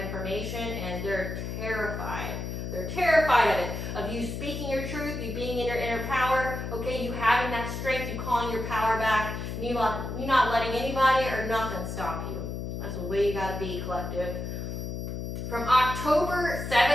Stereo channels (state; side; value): noise; left; hum, 5 dB below the sound